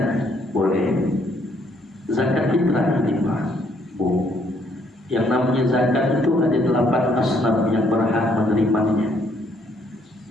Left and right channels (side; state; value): both; normal; correlation 0.68